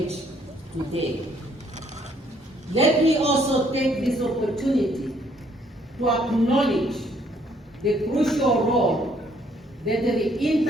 today. Let me also take this opportunity to acknowledge the crucial role that the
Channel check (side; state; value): both; normal; correlation 0.66